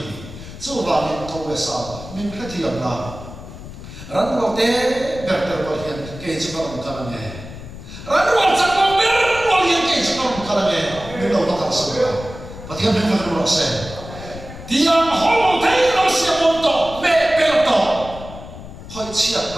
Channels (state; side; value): noise; left; rumble, 13 dB below the sound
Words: coba ni kau wesa min ketiam na ran lo te berter berian ke cuma bukan ni ran lo sak lo berian ke cuma bukan ni min lo tak semua patihan min kan lo se dia holo te lo siamonto me pelto hơi chia